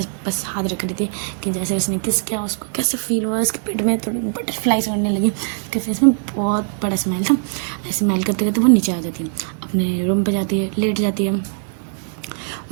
बस हाथ रख रही थी कि जैसे उसने किस किया उसको कैसे फील हुआ, उसके पेट में थोड़ी बटरफ्लाइज उड़ने लगी, उसके फेस में बहुत बड़ा स्माइल था। ऐसे स्माइल करते करते वो नीचे आ जाती है, अपने रूम पे जाती है, लेट जाती है।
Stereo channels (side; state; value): left; silent; 58 dB below the other